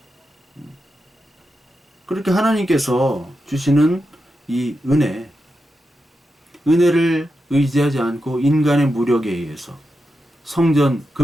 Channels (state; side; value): normal; both; correlation 0.88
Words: 그렇게 하나님께서 주시는 이 은혜를 의지하지 않고 인간의 무력에 의해서 성전,